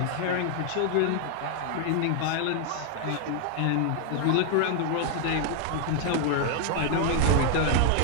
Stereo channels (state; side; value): different; both; correlation 0.00